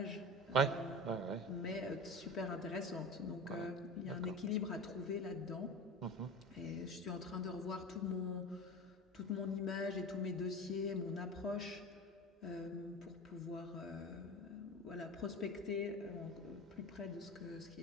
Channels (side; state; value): both; normal; correlation 0.32